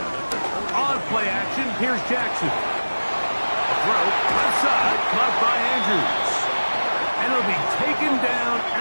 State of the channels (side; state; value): both; inverted; correlation -1.00